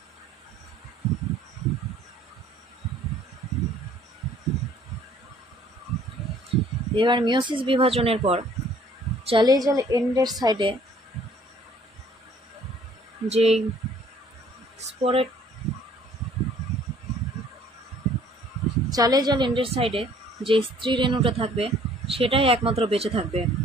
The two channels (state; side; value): normal; both; correlation 0.57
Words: এবার মিওসিস বিভাজনের পর চালিয়ে জাল এন্ডের সাইডে যেই স্পোরেট, চালিয়ে জাল এন্ডের সাইডে যে স্ত্রী রেণুটা থাকবে সেটাই একমাত্র বেঁচে থাকবে,